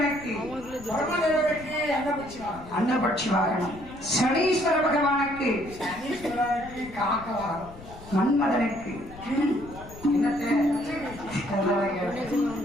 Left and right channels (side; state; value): left; noise; rumble, 17 dB below the sound